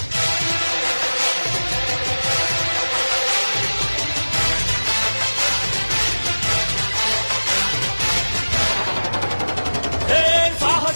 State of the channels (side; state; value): both; inverted; correlation -1.00